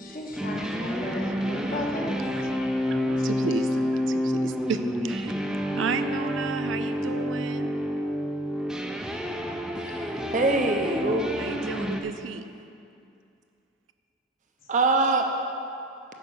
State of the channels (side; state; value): both; normal; correlation 0.55